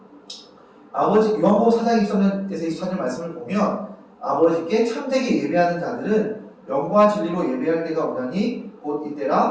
아버지 요한복음 4장 23절에서 24절 말씀을 보면 아버지께 참되게 예배하는 자들은 영과 진리로 예배할 때가 오나니 곧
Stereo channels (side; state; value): both; identical; correlation 1.00